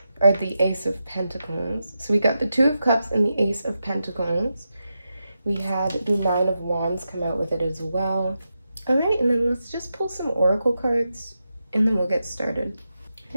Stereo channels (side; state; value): both; inverted; correlation -0.88